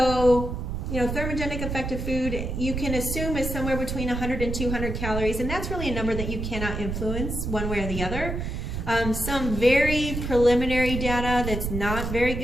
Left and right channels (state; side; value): noise; right; rumble, 4 dB below the sound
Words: thermogenic effective food you can assume is somewhere between 100 and 200 calories, and that's really a number that you cannot influence one way or the other. Some very preliminary data that's not very